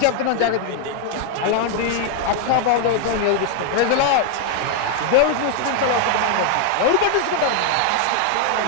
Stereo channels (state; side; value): different; both; correlation 0.00